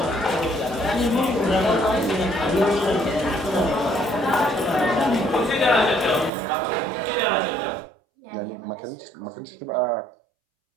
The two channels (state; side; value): drops out; left; at 6.3 s